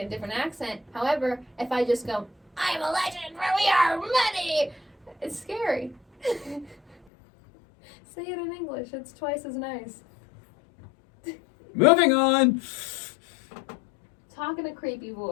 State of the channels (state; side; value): drops out; right; at 7.0 s